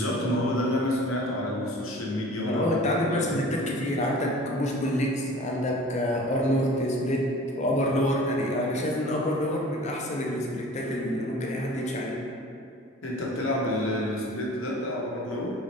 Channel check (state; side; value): normal; both; correlation 0.44